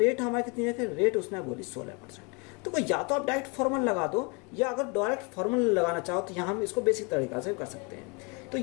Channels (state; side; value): quieter; right; 30.9 dB